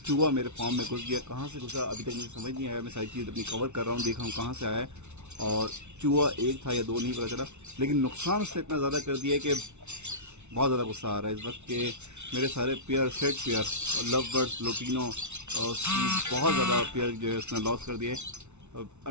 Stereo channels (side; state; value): left; late; 0.82 ms